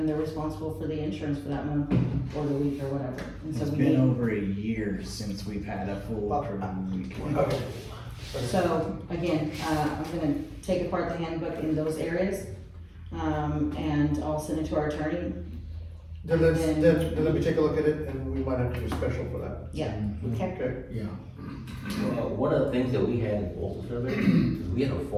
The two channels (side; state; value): both; identical; correlation 1.00